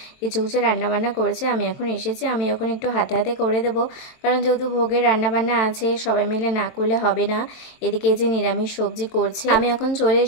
কিছু কিছু রান্নাবান্না করেছে। আমি এখন এসেছি, আমি এখন একটু হাতে হাতে করে দেবো, কারণ যেহেতু ভোগের রান্নাবান্না আছে, সবাই মিলে না করলে হবে না। এদিকে যে নিরামিষ সবজি করছে, আমি এখন চলে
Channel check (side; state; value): right; late; 22 ms